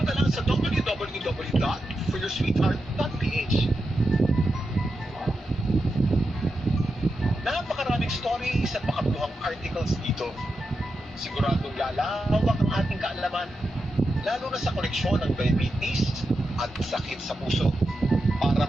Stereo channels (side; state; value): both; normal; correlation 0.88